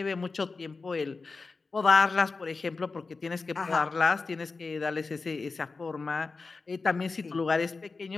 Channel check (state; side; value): quieter; right; 4.1 dB